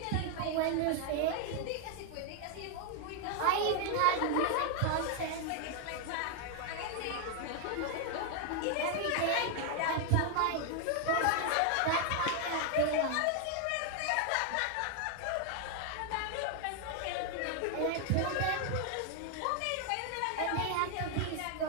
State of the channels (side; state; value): both; different; correlation 0.00